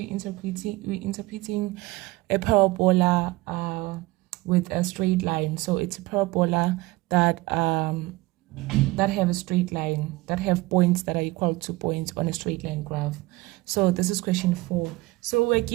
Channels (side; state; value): left; quieter; 20.4 dB